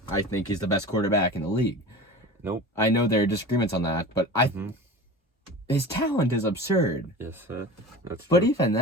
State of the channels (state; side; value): normal; both; correlation 0.34